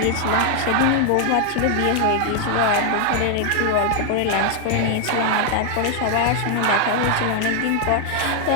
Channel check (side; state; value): both; different; correlation 0.00